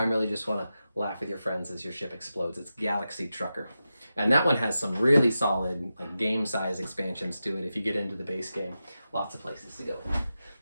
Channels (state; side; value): inverted; both; correlation -0.91